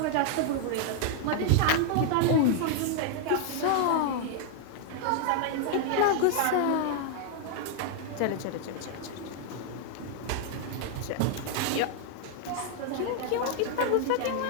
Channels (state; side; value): different; both; correlation 0.00